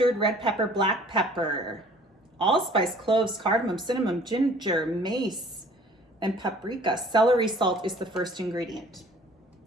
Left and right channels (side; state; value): both; normal; correlation 0.52